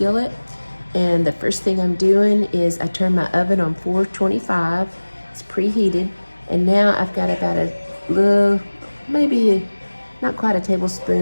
And the first thing I'm doing is I turn my oven on 425. It's preheated. And now I've got about a little, maybe not quite a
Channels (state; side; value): inverted; both; correlation -1.00